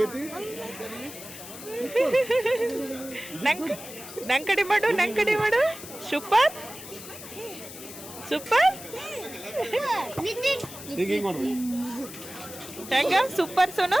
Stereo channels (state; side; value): noise; left; hiss, 13 dB below the sound